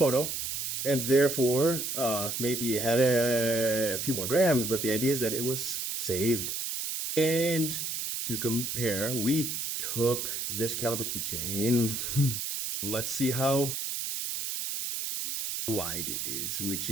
and therefore maybe it had a few more grams, but the idea is that it was saved. And to compare, we took this caliber keychain. Let's see how wide it is, which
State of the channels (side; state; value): right; noise; hiss, 3 dB below the sound